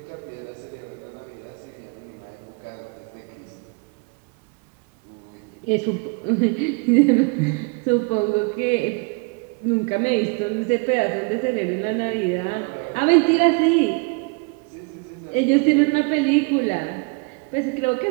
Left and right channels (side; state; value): left; quieter; 31.8 dB